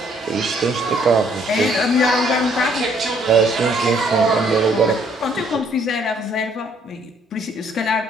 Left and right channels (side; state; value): both; normal; correlation 0.65